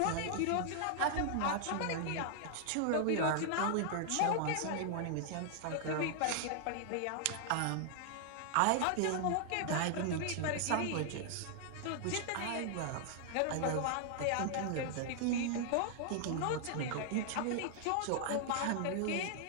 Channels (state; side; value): different; both; correlation 0.00